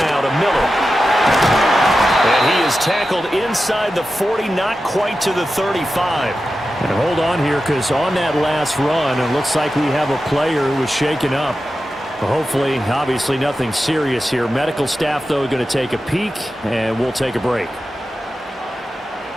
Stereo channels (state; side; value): normal; both; correlation 0.92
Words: to Miller. And he is tackled inside the 40, not quite to the 35. And hold on here, because on that last run, it looks like we have a player who was shaken up. Hopefully, obviously nothing serious here. Medical staff, though, going to take a peek, and we'll take a break.